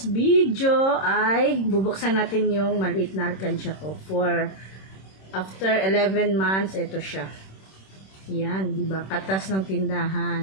video ay bubuksan natin yung maliit na alkansya ko. For after 11 months, ito siya. Yan, di ba? Katas ng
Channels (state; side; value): late; right; 26 ms